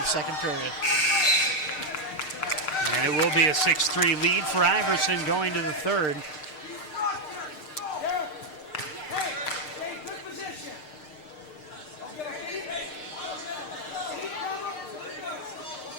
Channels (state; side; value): late; right; 6.6 ms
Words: second period. And it will be a 6-3 lead for Iverson going to the third.